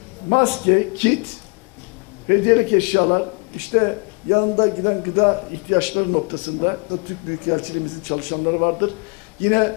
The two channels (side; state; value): right; quieter; 33.3 dB